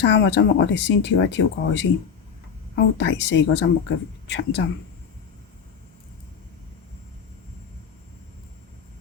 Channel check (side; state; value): right; quieter; 6.8 dB